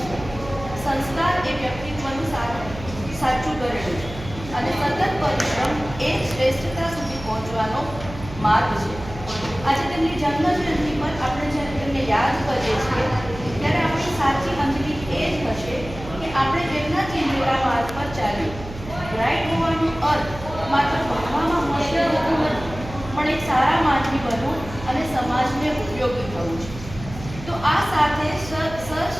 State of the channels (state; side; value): noise; right; hum, 13 dB below the sound